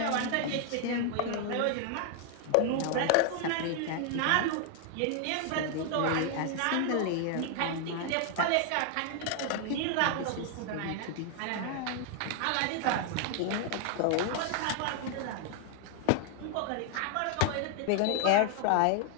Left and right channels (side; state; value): both; different; correlation 0.00